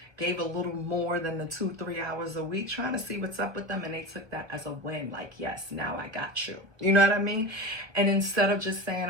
gave a little more than the 2-3 hours a week, trying to see what's up with them, and they took that as a win, like, yes, now I got you. You know what I mean? And instead of just saying,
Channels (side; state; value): left; late; 1.3 ms